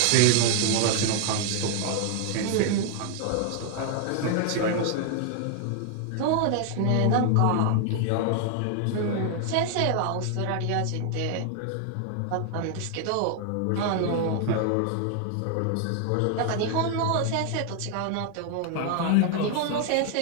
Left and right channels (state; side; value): different; both; correlation 0.00